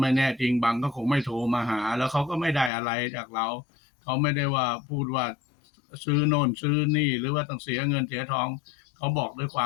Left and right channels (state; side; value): drops out; right; at 2.7 s